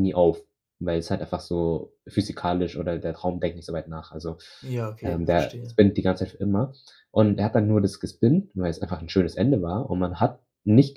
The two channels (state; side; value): identical; both; correlation 1.00